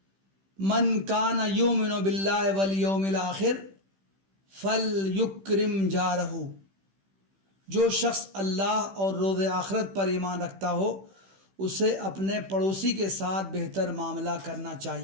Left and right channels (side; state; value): left; late; 15 ms